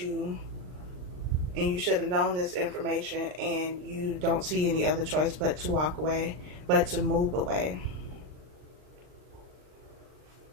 and you should have known this information, and you don't see any other choice but to walk away, but to move away.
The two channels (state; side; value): late; left; 39 ms